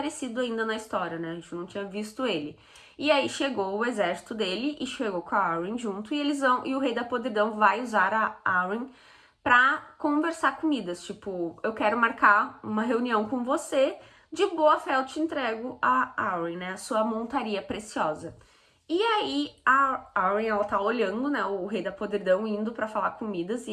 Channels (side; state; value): both; identical; correlation 1.00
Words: ainda na história, né? A gente não tinha visto ele. E aí chegou o exército dele e chegou com a Arryn junto. E o rei da podridão vai usar a Arryn pra conversar com Midas. Tipo, eu quero marcar uma reunião com você. De boa fé eu te entrego a Arryn, né? A sua montaria preciosa. E aí a Arryn, ela tá olhando, né, o rei da podridão indo pra falar com Midas e